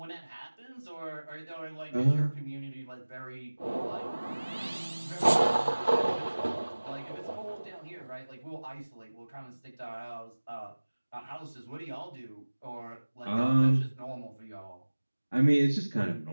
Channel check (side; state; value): both; inverted; correlation -1.00